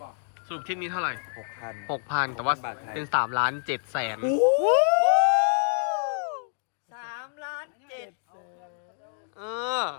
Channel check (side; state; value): right; silent; digital silence